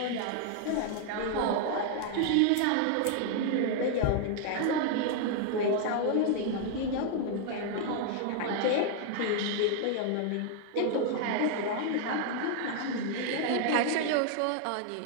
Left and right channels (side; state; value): both; different; correlation 0.00